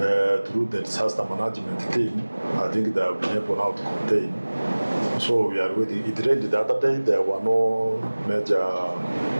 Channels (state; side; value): inverted; both; correlation -1.00